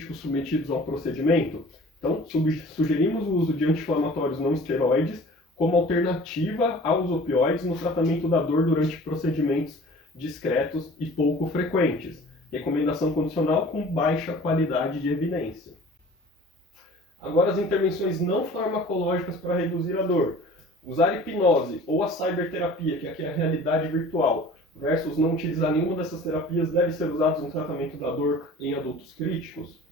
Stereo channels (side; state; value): both; normal; correlation 0.45